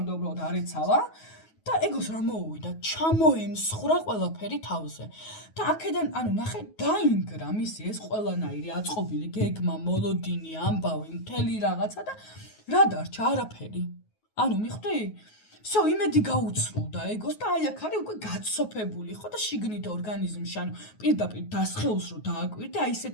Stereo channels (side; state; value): right; late; 9.4 ms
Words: უბრალოდ არ ეცალა და ეგოს რა მოუვიდა, ჩამოემსხვრა ყველაფერი თავზე. და აქედან, ნახე, დაინგრა მისი ეს ყველანაირი აწყობილი გეგმა, მოლოდინი, ამბავი, მთელი რაღაცა და რა დარჩა? არაფერი. მიხვდი? всё, იმედი გაუცრულდა ეგოს და აქ არის უკვე გაცოფებული, ხო და შიგნით ორგანიზმში, პირდაპირ დასხეულს რო დააკვირდე,